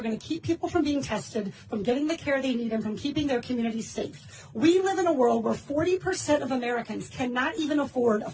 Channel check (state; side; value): identical; both; correlation 1.00